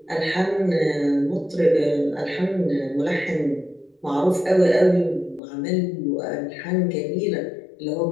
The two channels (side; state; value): right; drops out; at 5.4 s